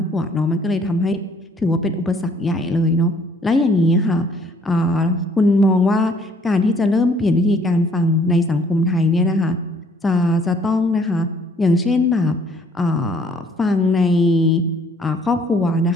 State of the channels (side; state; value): both; normal; correlation 0.61